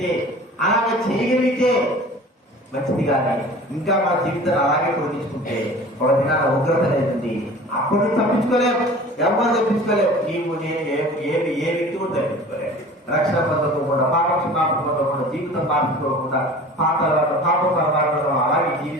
అలాగే చేయగలిగితే మంచిది. కానీ ఇంకా మన జీవితాన్ని అలాగే పొడిగించుకుంటే ఒక దినాల ఉగ్రత అనేది అప్పుడు తప్పించుకోలేము, ఎవరు తప్పించుకోలేము. నీవు నేను ఏ వ్యక్తి కూడా తప్పించుకోలేము. రక్షణ పొందకుండా, పాప క్షమాపణ పొందకుండా, జీవితం మార్చుకోకుండా పాప పరమాత్మలో అలాగే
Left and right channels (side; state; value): both; normal; correlation 0.42